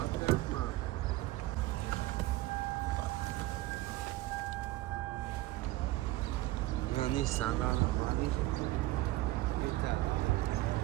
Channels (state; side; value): quieter; left; 17.9 dB